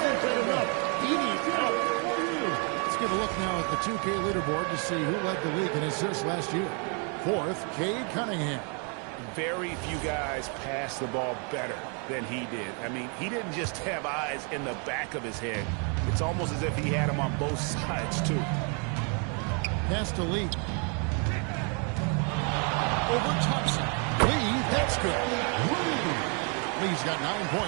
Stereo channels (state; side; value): quieter; left; 37.4 dB